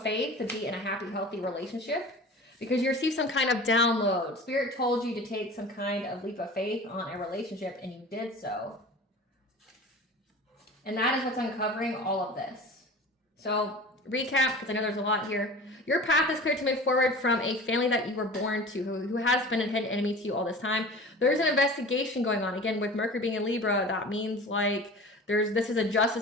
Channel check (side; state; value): both; normal; correlation 0.38